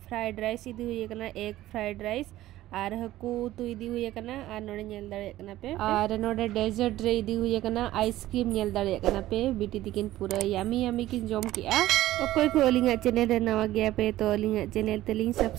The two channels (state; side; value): quieter; left; 15.1 dB